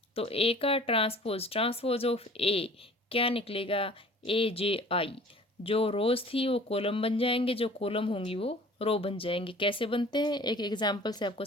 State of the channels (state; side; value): normal; both; correlation 0.48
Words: तो ए का ट्रांसपोज ऑफ ए क्या निकलेगा? AJI। जो रोज थी वो कॉलम बन जाएंगे, जो कॉलम होंगी वो रो बन जाएंगे। कैसे बनते हैं एक एग्जांपल से आपको